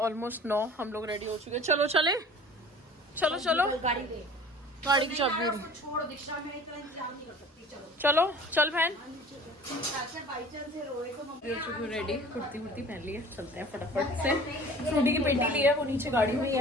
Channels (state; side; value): normal; both; correlation 0.44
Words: 9। हम लोग रेडी हो चुके हैं। चलो चले, चलो चलो, गाड़ी की चाबी चलो चल बहन। रेडी, कुर्ती वुर्ती पहन ली है, चलते हैं फटाफट से। फ्रूटी की पेटी ली है, वो नीचे गाड़ी में ही